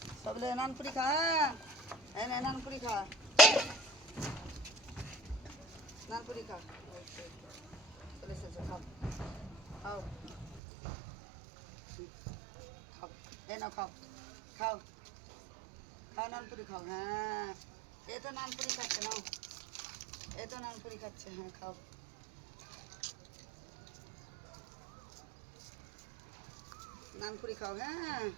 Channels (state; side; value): drops out; left; at 10.6 s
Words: सबले नानपुरी खा नानपुरी खा नानपुरी खा चले से खाओ खाओ खाओ ना खाओ खाओ खाओ नानपुरी खाओ हाँ ये तो नानपुरी खाচ্ছে नाও ये तो नानपुरी खाচ্ছে हाँ खाओ नानपुरी खाओ हाँ